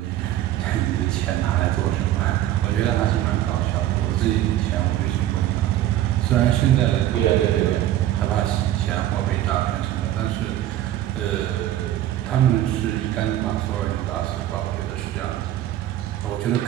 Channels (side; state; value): left; quieter; 13.1 dB